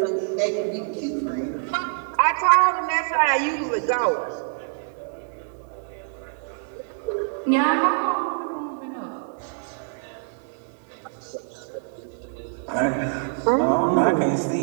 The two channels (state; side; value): silent; left; 62 dB below the other